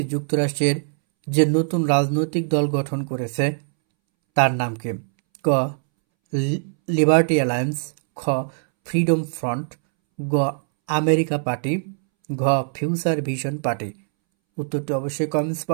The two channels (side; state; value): left; silent; 64 dB below the other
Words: যুক্তরাষ্ট্রের যে নতুন রাজনৈতিক দল গঠন করেছে তার নাম কি? ক লিবার্টি অ্যালায়েন্স, খ ফ্রিডম ফ্রন্ট, গ আমেরিকা পার্টি, ঘ ফিউচার ভিশন পার্টি। উত্তরটি অবশ্যই কমেন্টস